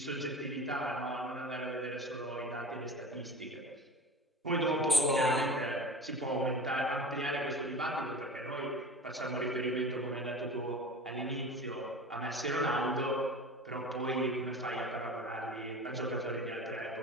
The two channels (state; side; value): normal; both; correlation 0.35